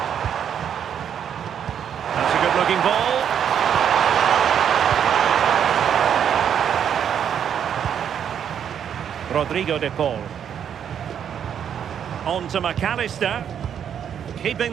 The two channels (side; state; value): left; quieter; 8.6 dB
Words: That's a good-looking ball. Rodrigo de Paul. On to McAllister. Keeping